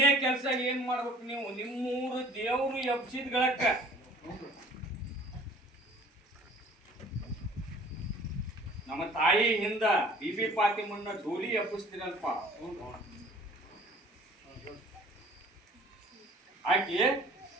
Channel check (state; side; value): normal; both; correlation 0.50